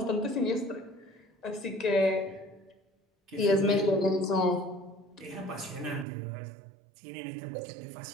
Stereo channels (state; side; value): drops out; left; at 6.1 s